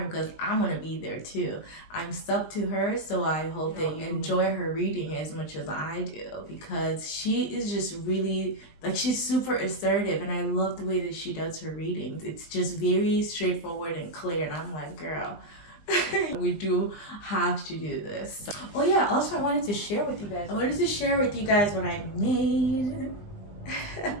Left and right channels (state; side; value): late; right; 20 ms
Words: because I'm going to be there too. I'm stuck to her, so I hope that you enjoy her reading as much as I do, because she is just really, like, she's super assertive, and I love the way that she does her readings. It's just very straightforward and clear, and I'm like, girl, we do have to do this. Oh yeah, also I wanted to share with you guys what I made.